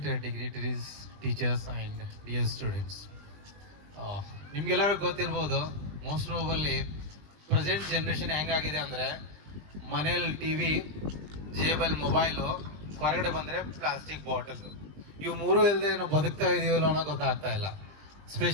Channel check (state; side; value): late; left; 20 ms